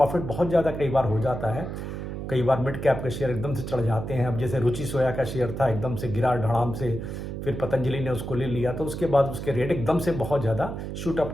बहुत ज़्यादा कई बार हो जाता है। कई बार मिड कैप के शेयर एकदम से चढ़ जाते हैं। अब जैसे रुचि सोया का शेयर था, एकदम से गिरा धड़ाम से फिर पतंजलि ने उसको ले लिया, तो उसके बाद उसके रेट एकदम से बहुत ज़्यादा शूट अप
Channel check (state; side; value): noise; right; hum, 6 dB below the sound